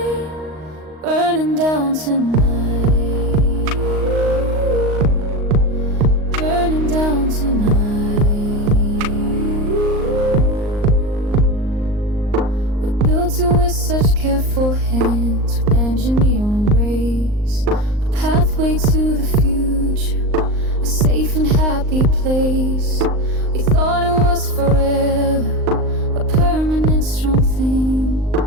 burning down tonight, burning down tonight. We built it with such careful hands, with engineering grace, a pathway to the future, a safe and happy place. We thought it was forever, a permanent strong thing,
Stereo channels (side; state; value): left; late; 38 ms